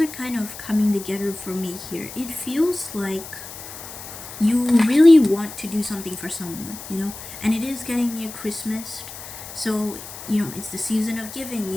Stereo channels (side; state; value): left; noise; hiss, 13 dB below the sound